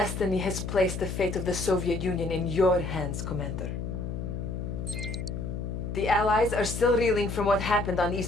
has placed the fate of the Soviet Union in your hands, Commander. The Allies are still reeling from what happened on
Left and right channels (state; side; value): noise; left; hum, 5 dB below the sound